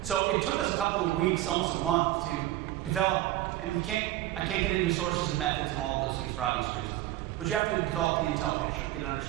So it took us a couple of weeks, almost a month, to develop, and I can't get into sources and methods and all of those things for obvious reasons, but you have to develop the intel picture, get an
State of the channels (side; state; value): left; quieter; 15.0 dB